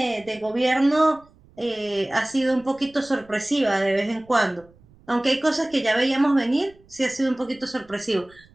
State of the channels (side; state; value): right; noise; rumble, 28 dB below the sound